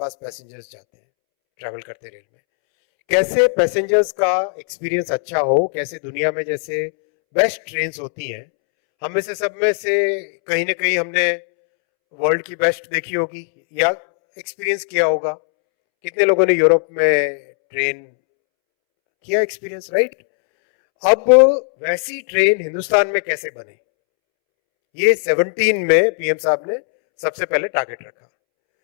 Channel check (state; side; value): silent; right; 67 dB below the other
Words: पैसेंजर्स जाते हैं, ट्रैवल करते रेल में। कैसे पैसेंजर्स का एक्सपीरियंस अच्छा हो, कैसे दुनिया में जैसे बेस्ट ट्रेन होती हैं, हम में से सब में से कहीं ना कहीं हमने वर्ल्ड की बेस्ट देखी होगी या एक्सपीरियंस किया होगा। कितने लोगों ने यूरोप में ट्रेन किया एक्सपीरियंस, राइट? अब वैसी ट्रेन हिंदुस्तान में कैसे बने, ये 17 में पीएम साहब ने सबसे पहले टारगेट रखा।